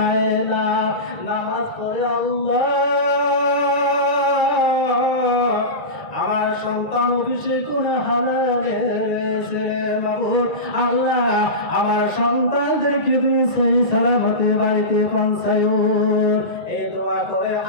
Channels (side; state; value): right; late; 1.8 ms